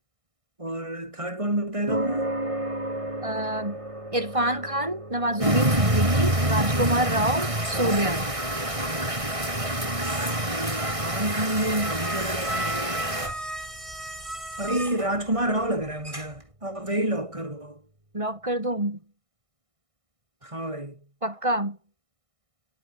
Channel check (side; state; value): left; late; 1.6 ms